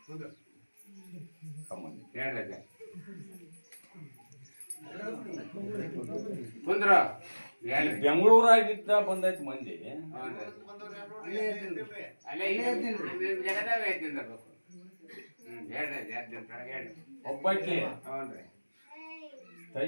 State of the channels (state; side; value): inverted; both; correlation -1.00